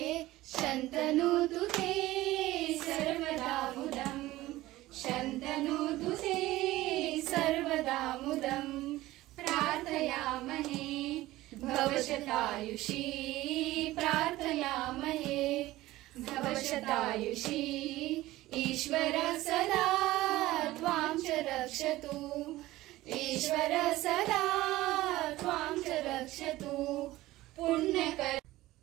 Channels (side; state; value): left; quieter; 17.2 dB